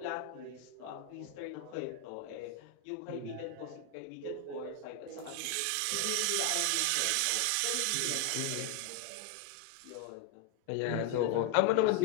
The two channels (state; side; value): different; both; correlation 0.00